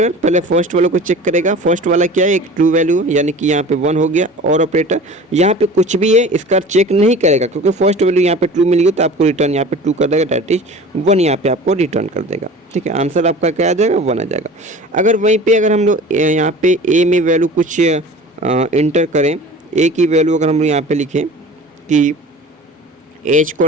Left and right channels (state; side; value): normal; both; correlation 0.40